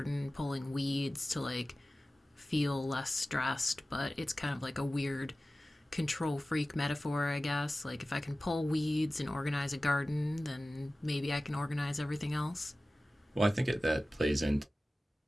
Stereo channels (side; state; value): both; normal; correlation 0.96